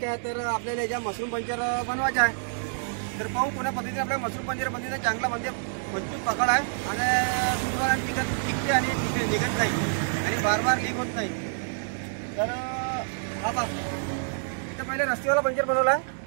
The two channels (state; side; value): silent; left; digital silence